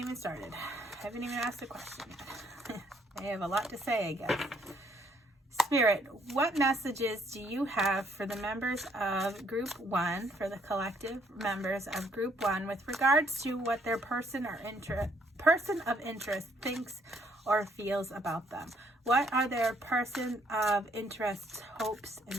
started. I haven't even asked a question yet. I have a lot to say, I guess. Spirit, what messages do you have for the members of Group 1, for the collective members of Group 1, with regards to what their person of interest thinks or feels about them? What are their person of interest's hopes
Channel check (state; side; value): normal; both; correlation 0.68